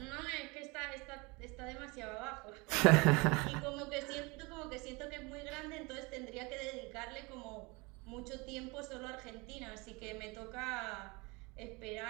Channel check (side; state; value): left; quieter; 26.6 dB